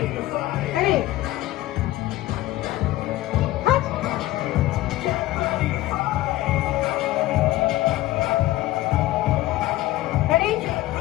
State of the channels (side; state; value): right; quieter; 16.6 dB